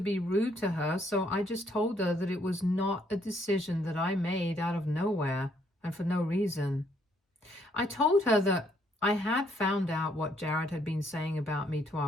rude to her, so I just told her that it was not a decision that I made out of nowhere and for no reason. I told her that I had found out what Jared had been saying about me to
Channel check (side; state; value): both; normal; correlation 0.69